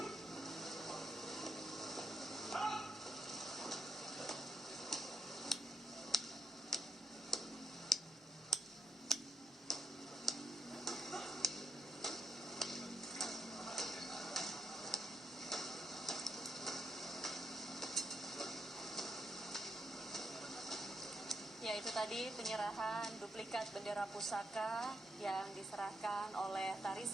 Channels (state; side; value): normal; both; correlation 0.79